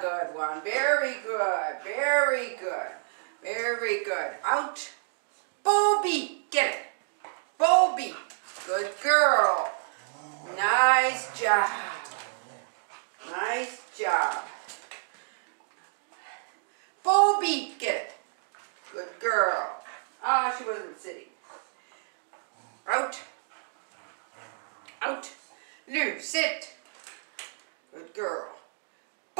good one. Very good. Very good. Very good. Out. Bobby, get it. Bobby. Good girl. Nice job. Nice job. Bobby, get it. Good girl. Ah, she wasn't sitting. Out. Out. Lou, sit.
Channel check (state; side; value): silent; left; digital silence